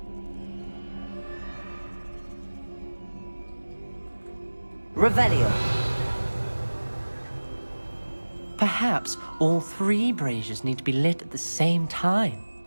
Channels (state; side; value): inverted; both; correlation -1.00